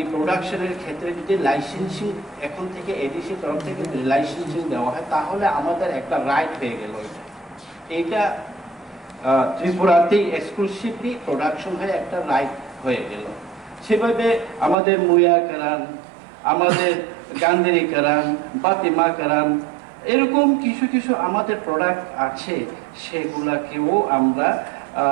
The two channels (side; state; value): left; drops out; at 14.8 s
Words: প্রোডাকশনের ক্ষেত্রে যদি লাইসেন্সিং এখন থেকে এডিসি তরফ থেকে লাইসেন্সিং দেওয়া হয়, তাহলে আমাদের একটা রাইট হয়ে গেল। এটা ত্রিপুরাতেই এক্সক্লুসিভলি প্রোডাকশন হয়ে একটা রাইট হয়ে গেল। সেভাবে আমাদের মুয়া কারান, আমাদের গান্ধেরি কারান, বাতিমা কারান, এরকম কিছু কিছু আমাদের প্রোডাক্ট আছে, সেগুলাকেও আমরা